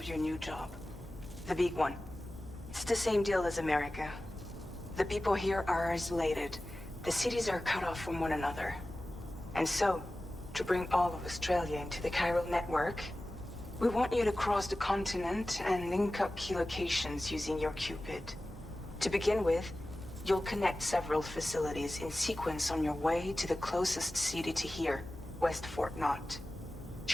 your new job. The big one. It's the same deal as America. The people here are isolated. The cities are cut off from one another. And so, to bring all of Australia into the chiral network, we want you to cross the continent and link up key locations using your Cupid. To begin with, you'll connect several facilities in sequence on your way to the closest city to here, West Fort Knott.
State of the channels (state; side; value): normal; both; correlation 0.96